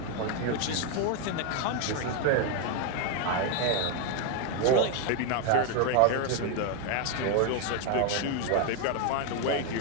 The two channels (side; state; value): both; different; correlation 0.01